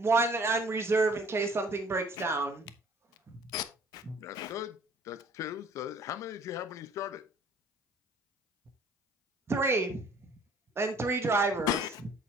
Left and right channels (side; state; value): both; normal; correlation 0.55